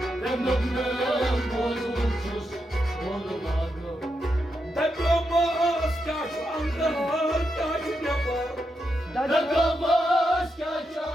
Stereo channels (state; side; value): normal; both; correlation 0.84